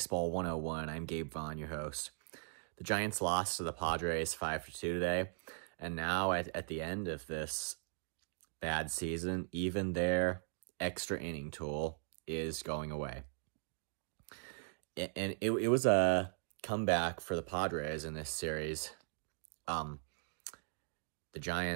101. I'm Gabe Vaughn, your host. The Giants lost to the Padres 5-2 today, and now at the end of this bad season, even their extra inning tool is going away. And it was a comeback for the Padres in this series. The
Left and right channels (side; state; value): left; silent; digital silence